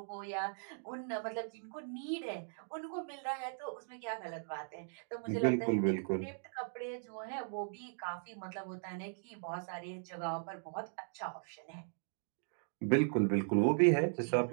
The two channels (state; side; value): silent; left; digital silence